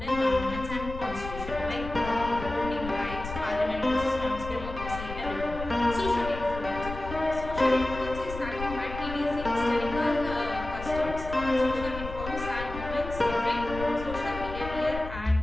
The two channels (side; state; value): left; noise; rumble, 9 dB below the sound